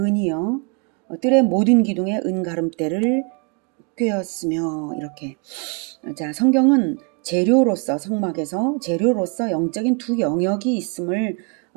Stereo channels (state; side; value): quieter; left; 34.3 dB